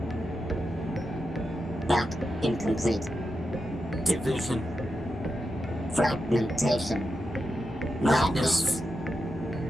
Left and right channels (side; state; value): both; normal; correlation 0.88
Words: Back incomplete. Division. Fragmentation. Madness.